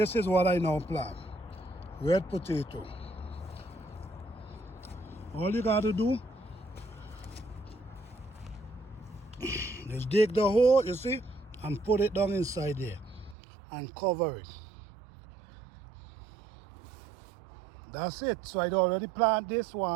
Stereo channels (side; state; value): left; drops out; at 13.4 s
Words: is what I now plant. Red potato. All you got to do is dig the hole, you see, and put it down inside there and cover it. That's it. So I already plant this